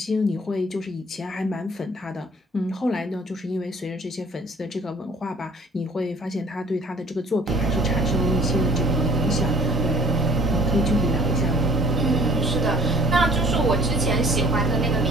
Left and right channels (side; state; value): both; normal; correlation 0.54